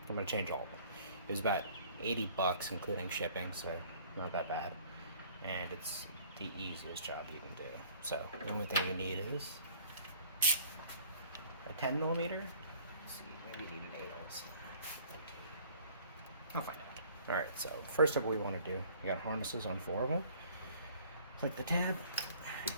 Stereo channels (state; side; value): inverted; both; correlation -0.53